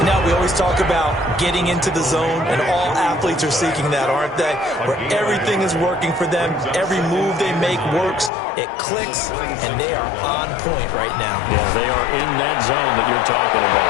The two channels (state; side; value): drops out; right; at 8.3 s